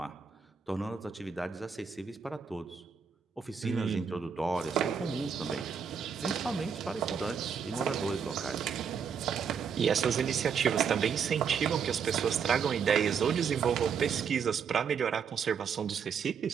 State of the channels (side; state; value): left; quieter; 6.7 dB